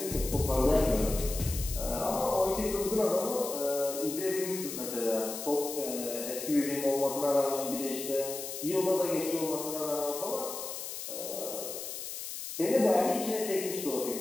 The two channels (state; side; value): noise; left; hiss, 7 dB below the sound